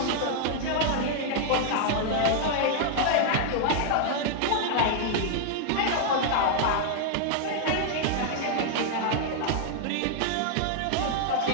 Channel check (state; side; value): different; both; correlation 0.00